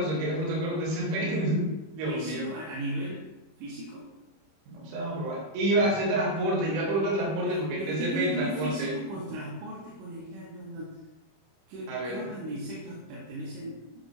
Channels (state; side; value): late; left; 25 ms